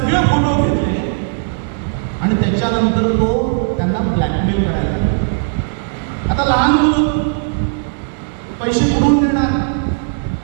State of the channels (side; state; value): left; silent; digital silence